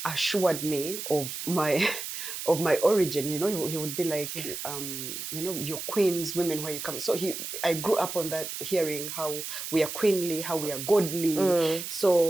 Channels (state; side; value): noise; right; hiss, 7 dB below the sound